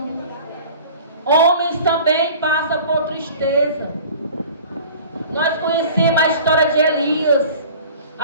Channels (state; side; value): inverted; both; correlation -0.44